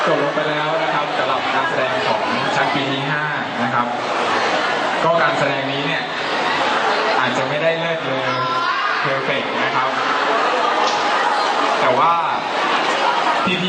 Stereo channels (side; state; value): both; identical; correlation 1.00